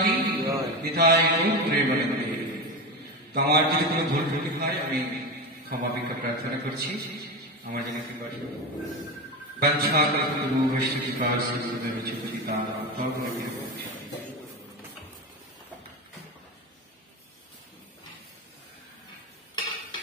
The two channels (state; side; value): normal; both; correlation 0.20